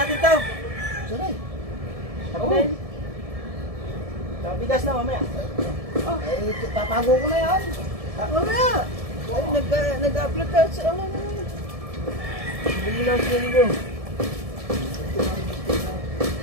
to. Saray. Oo. Bigas na mamaya. Eh, tatago ko na yan. Mamaya. Ay, nag-upload ka sa ano. Bili lang sila nyo.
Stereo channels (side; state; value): left; late; 1.7 ms